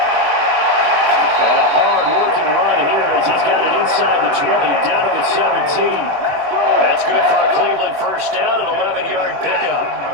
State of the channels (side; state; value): left; late; 21 ms